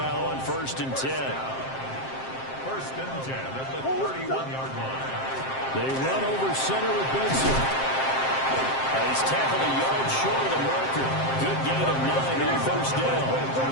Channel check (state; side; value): late; right; 7.6 ms